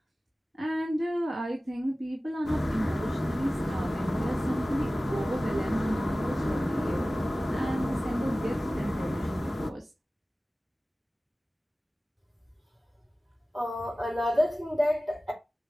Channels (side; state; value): both; normal; correlation 0.97